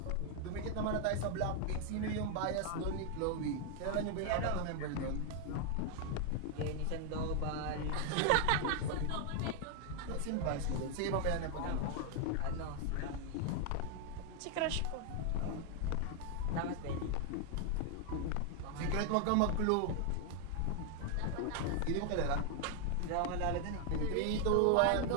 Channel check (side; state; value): both; different; correlation 0.00